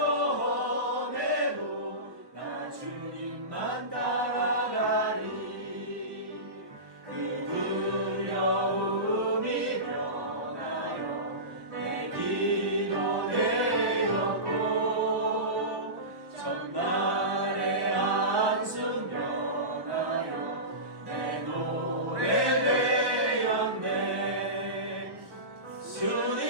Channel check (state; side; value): late; left; 1.2 ms